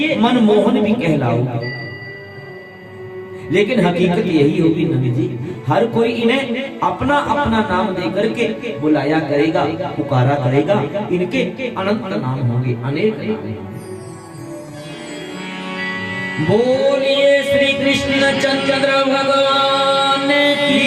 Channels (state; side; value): identical; both; correlation 1.00